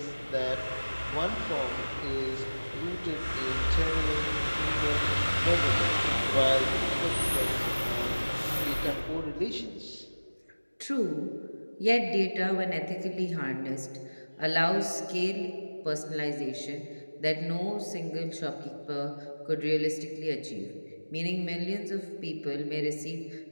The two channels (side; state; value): both; inverted; correlation -1.00